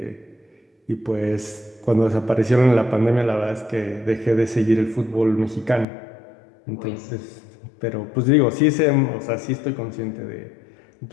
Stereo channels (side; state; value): right; drops out; at 5.9 s